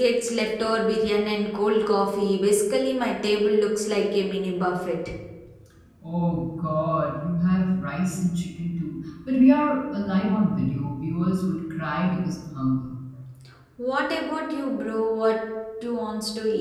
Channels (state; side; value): identical; both; correlation 1.00